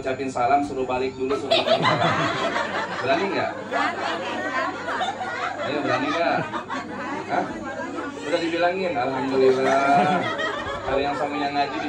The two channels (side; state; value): both; identical; correlation 1.00